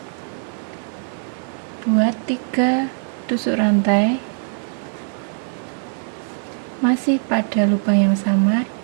Buat 3 tusuk rantai. Masih pada lubang yang sama,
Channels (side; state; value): left; silent; 65 dB below the other